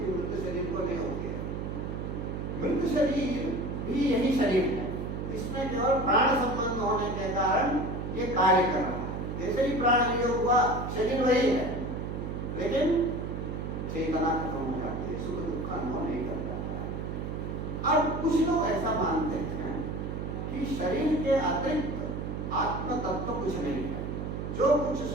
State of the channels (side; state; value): right; noise; hum, 4 dB below the sound